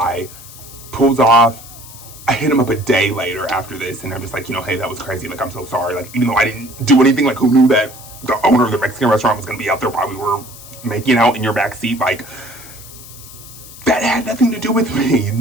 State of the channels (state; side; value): noise; left; hiss, 17 dB below the sound